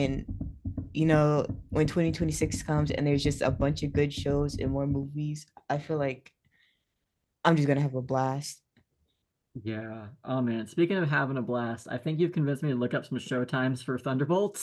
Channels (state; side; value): identical; both; correlation 1.00